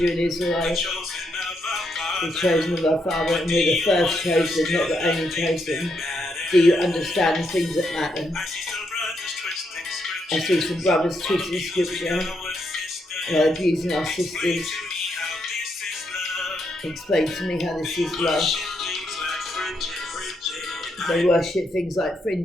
you're an Israelite, the chosen of our Father, and we're the first chosen, not the only chosen. Do you understand the things that matter? I see some brothers twisting scripture, abusing our sisters. Explain to me how this is love. They worship things like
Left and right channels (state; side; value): normal; both; correlation 0.79